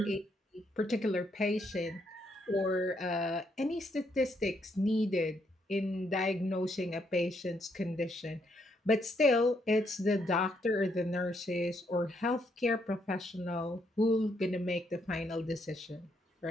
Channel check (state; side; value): normal; both; correlation 0.75